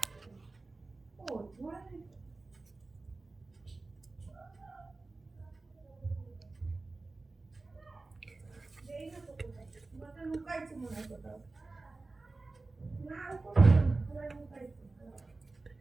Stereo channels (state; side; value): quieter; left; 3.5 dB